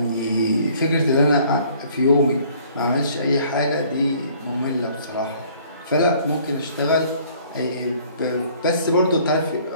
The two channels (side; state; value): both; inverted; correlation -0.57